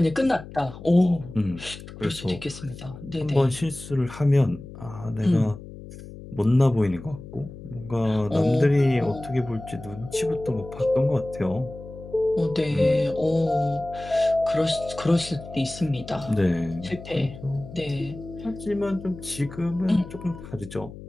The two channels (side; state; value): left; noise; hum, 14 dB below the sound